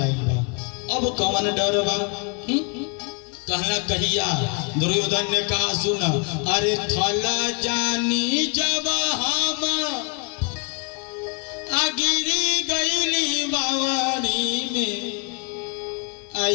आई बा अब कौन डर बा कहना कहिया दुर्योधन ने कहा सुन अरे थला जानी जब हम गिरी गईली बावरी में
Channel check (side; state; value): right; quieter; 34.7 dB